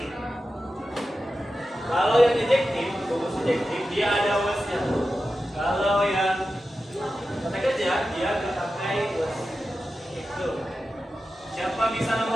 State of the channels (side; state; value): both; normal; correlation 0.92